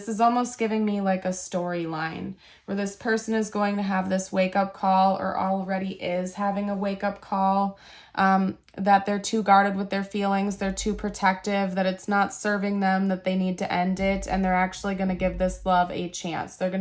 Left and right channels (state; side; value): identical; both; correlation 1.00